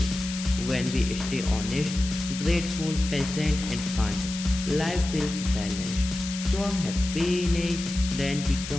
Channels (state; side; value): noise; left; hiss, 9 dB below the sound